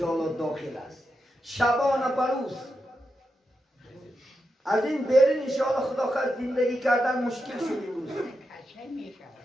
داخل است. شبانه بروز از این بیرون انشاءالله خدا خواهد زندگی کردن مشکل شد امروز.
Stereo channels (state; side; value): normal; both; correlation 0.87